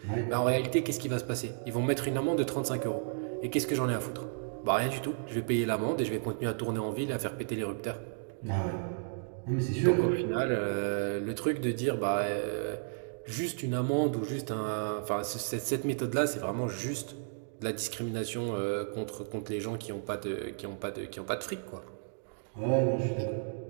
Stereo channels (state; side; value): silent; left; digital silence